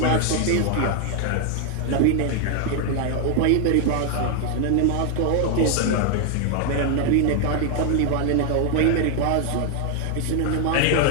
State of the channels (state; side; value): different; both; correlation 0.00